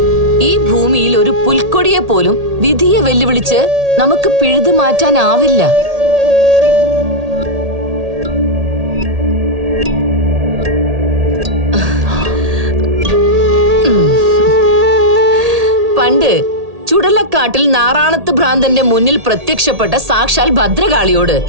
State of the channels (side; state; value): left; late; 1.8 ms